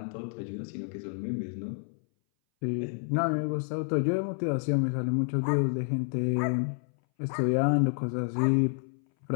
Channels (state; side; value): silent; right; 58 dB below the other